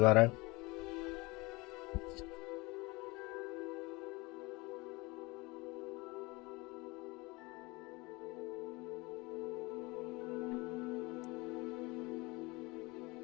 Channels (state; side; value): quieter; right; 24.0 dB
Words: आ रहा है?